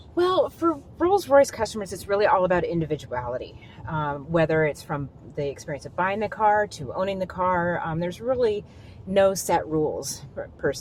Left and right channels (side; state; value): both; identical; correlation 1.00